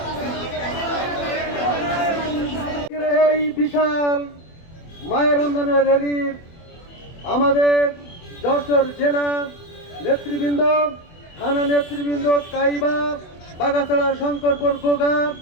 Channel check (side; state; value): right; late; 24 ms